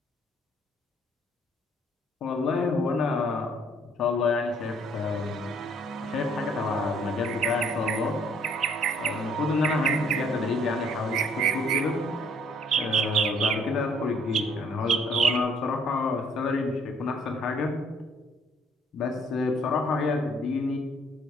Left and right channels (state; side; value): normal; both; correlation 0.62